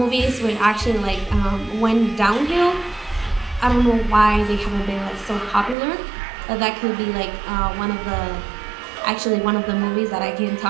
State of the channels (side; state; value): left; drops out; at 5.8 s